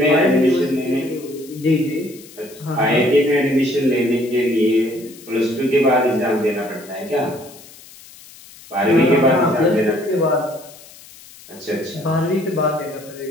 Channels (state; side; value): noise; left; hiss, 21 dB below the sound